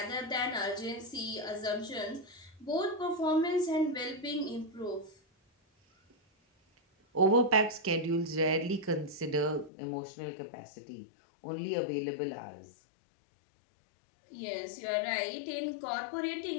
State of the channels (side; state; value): right; drops out; at 9.7 s